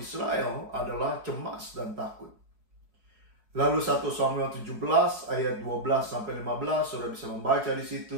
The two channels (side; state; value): left; late; 4.7 ms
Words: adalah cemas dan takut. Lalu 1 Samuel 17 ayat 12-15 sudah bisa membaca di